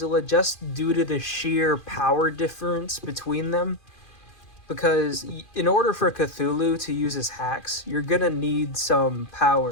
just due to the sheer power difference between them. Because in order for Cthulhu to use his hacks, you're gonna need some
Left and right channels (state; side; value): late; right; 2.4 ms